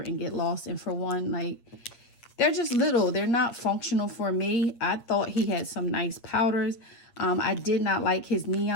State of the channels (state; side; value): late; right; 8.6 ms